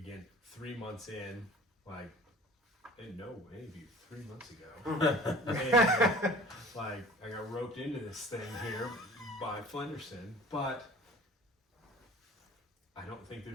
3 months in, like, I didn't know any of you 3 months ago. And, like, I got roped into this thing here by Flenderson, but I don't think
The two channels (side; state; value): both; normal; correlation 0.44